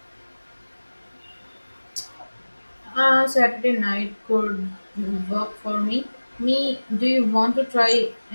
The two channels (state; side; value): inverted; both; correlation -1.00